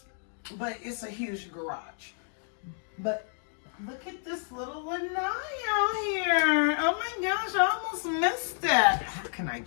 it's a huge garage. But look at this little lanai out here. Oh my gosh, I almost missed that. How can I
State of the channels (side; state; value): right; silent; 58 dB below the other